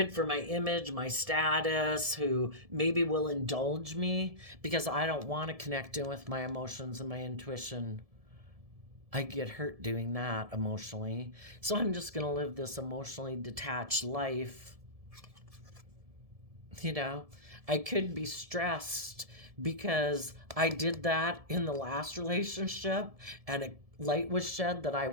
for my image, my status, who maybe will indulge me because I don't want to connect in with my emotions and my intuition. I get hurt doing that emotionally. So I'm just going to live this emotionally detached life. You know, I could be stressed because I did that in the last relationship and a light was shed that I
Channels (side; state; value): left; late; 1.7 ms